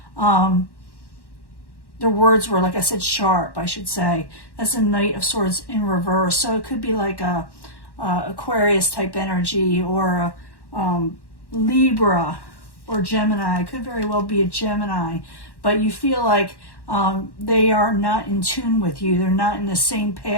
their words were, like I said, sharp, I should say. That's the Knight of Swords in reverse. So it could be like a Aquarius type energy or a Libra or Gemini. It could very well be a Gemini. But you feel like they are not in tune with you. They're not in the same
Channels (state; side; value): late; right; 1.1 ms